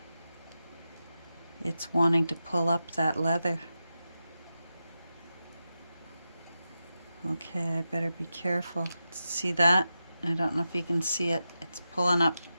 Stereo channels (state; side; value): inverted; both; correlation -0.90